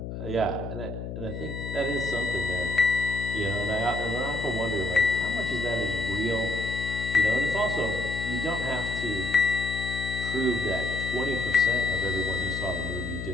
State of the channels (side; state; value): left; noise; hum, 7 dB below the sound